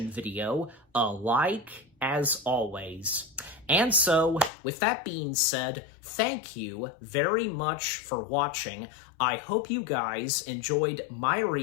video a like, as always. And so, with that being said, thank you very much for watching. I hope you guys enjoyed my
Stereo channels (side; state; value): right; drops out; at 4.5 s